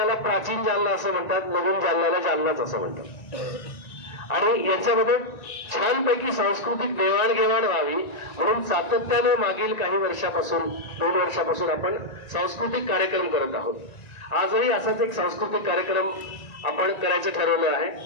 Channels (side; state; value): right; late; 1.9 ms